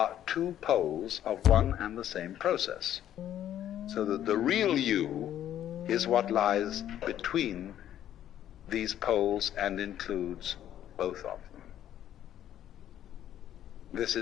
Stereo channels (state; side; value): quieter; right; 11.3 dB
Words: two poles of one and the same process. So that the real you is what lies between these poles and includes both of them. This